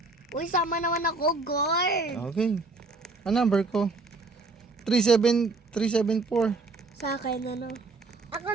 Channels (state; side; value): quieter; left; 3.5 dB